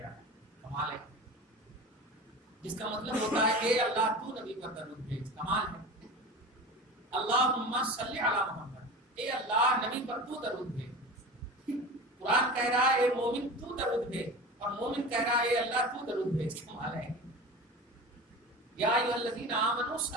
علی. کمال ہے. جس کا مطلب ہوتا ہے اے اللہ تو نبی پر درود بھیج. کمال ہے. اللہم صلی علی محمد. اے اللہ نبی پر تو درود بھیج. قرآن کہہ رہا ہے اے مومن تو درود بھیج، اور مومن کہہ رہا ہے اے اللہ تو درود بھیج. کمال ہے. یا ایھا الذین آمنوا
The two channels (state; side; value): normal; both; correlation 0.32